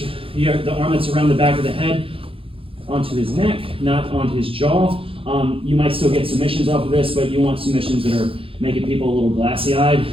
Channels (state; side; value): late; left; 0.27 ms